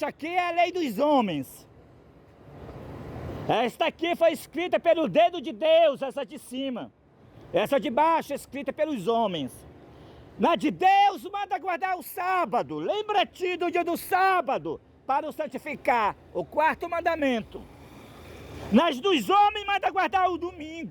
aqui é a lei dos homens. Esta aqui foi escrita pelo dedo de Deus, essa de cima. Essa de baixo é escrita pelos homens. Na de Deus manda guardar o sábado. Lembra-te do dia do sábado para o santificar, o quarto mandamento. Nas dos homens manda guardar o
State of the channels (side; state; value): both; identical; correlation 1.00